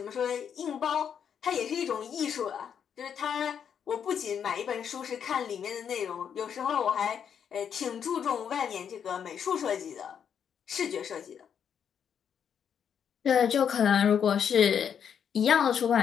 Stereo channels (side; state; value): right; quieter; 7.9 dB